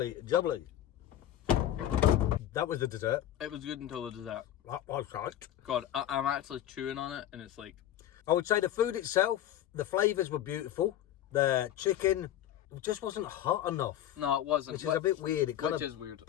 jubbly. That was the dessert. It was good until the dessert. That was right. God, I'm actually chewing on it and it's like... I would say the food itself, the flavours were beautiful. The chicken just wasn't hot enough. No, it wasn't. Which is a bit weird. It kind Which of is weird.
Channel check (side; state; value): right; quieter; 11.9 dB